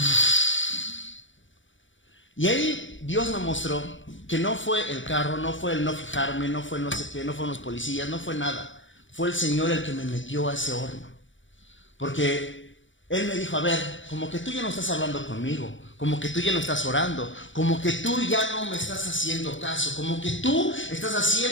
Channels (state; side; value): late; right; 0.56 ms